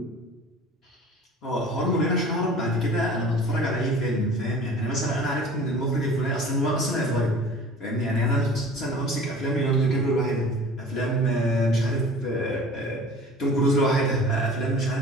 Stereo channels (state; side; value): normal; both; correlation 0.43